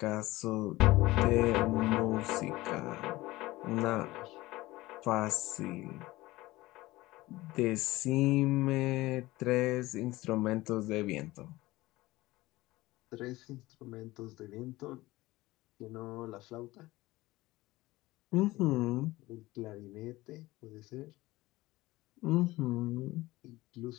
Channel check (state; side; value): quieter; right; 19.0 dB